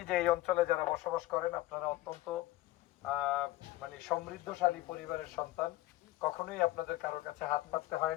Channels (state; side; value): quieter; right; 16.9 dB